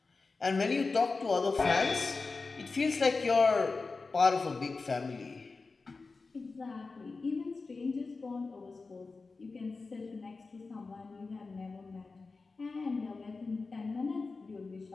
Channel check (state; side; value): quieter; right; 4.0 dB